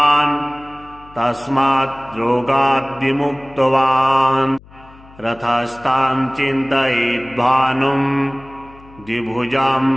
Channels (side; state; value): left; noise; hum, 23 dB below the sound